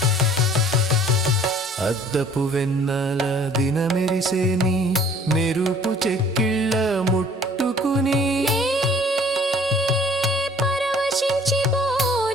అద్దపు వెన్నెల దినమెరిసేని మెరుపు చెక్కిళ్ళ ముట్టుకుని పరవశించి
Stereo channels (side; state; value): both; normal; correlation 0.54